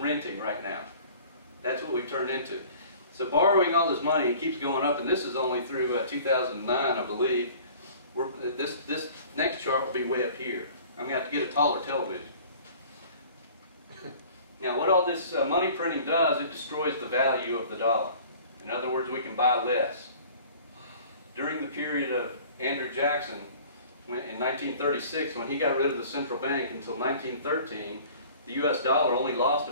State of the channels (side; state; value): both; inverted; correlation -0.48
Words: right now. That's what we've turned into. So borrowing all this money, it keeps going up, and this is only through 2009, I believe. This next chart will be way up here. I'm going to have to get a taller television. Now what all this money printing does, it destroys the value of the dollar. In other words, we can buy less. During the period of Andrew Jackson, in 1936, when he got rid of the central bank until 1913, the US dollar only lost